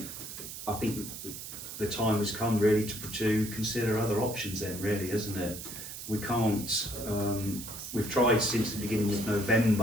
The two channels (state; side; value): noise; right; hiss, 9 dB below the sound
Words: I think the time has come really to consider other options. Then, really, isn't it? We can't. We've tried since the beginning of